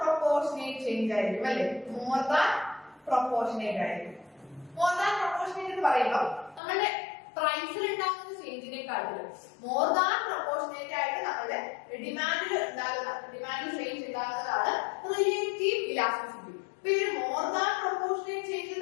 ചേഞ്ച് ആയിരിക്കും അല്ലെ. മോർ ദാൻ പ്രൊപ്പോർഷനേറ്റ് ആയിരിക്കും. മോർ ദാൻ പ്രൊപ്പോർഷനേറ്റ് എന്ന് പറയുമ്പോൾ നമ്മുടെ പ്രൈസിൽ ഉണ്ടാകുന്ന ചേഞ്ചിനെക്കാട്ടിലും മോർ ദാൻ പ്രൊപ്പോർഷനേറ്റ് ആയിട്ട് നമ്മുടെ ഡിമാൻഡിൽ ചേഞ്ച് ഉണ്ടാകുന്നതാണ് റിലേറ്റീവ് ഇലാസ്റ്റിസിറ്റി. ഇപ്പൊ ഈ മോർ ദാൻ പ്രൊപ്പോർഷനേറ്റ് ചേഞ്ച്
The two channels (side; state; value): right; drops out; at 6.6 s